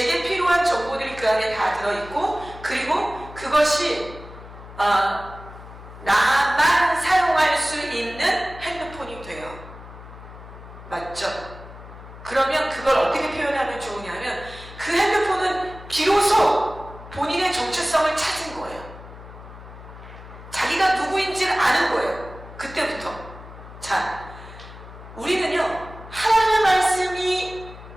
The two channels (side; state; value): left; noise; hum, 16 dB below the sound